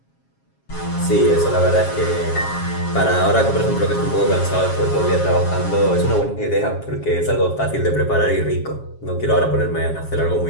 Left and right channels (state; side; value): late; right; 7.3 ms